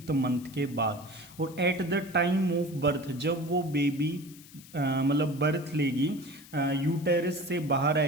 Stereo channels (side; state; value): left; noise; hiss, 21 dB below the sound